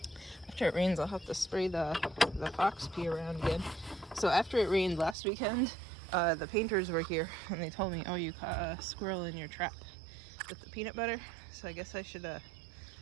after it rains, I'll have to spray the fox pee around again. So after it rained last weekend, the painters were here and they told me, oh, you caught a squirrel in your trap with the peanut butter. So I guess I should have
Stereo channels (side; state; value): left; drops out; at 5.2 s